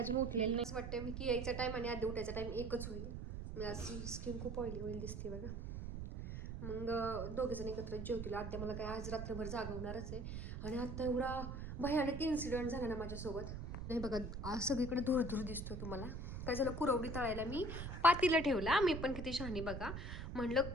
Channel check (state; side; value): noise; right; rumble, 6 dB below the sound